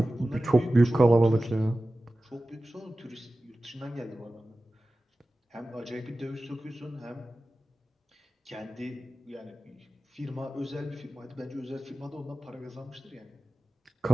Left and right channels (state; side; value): normal; both; correlation 0.95